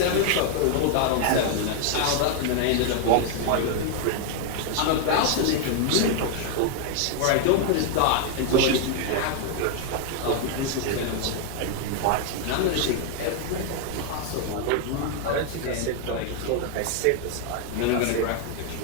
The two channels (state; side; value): different; both; correlation 0.00